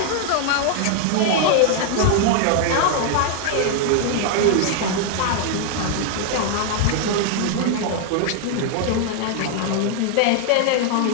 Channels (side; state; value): both; different; correlation 0.00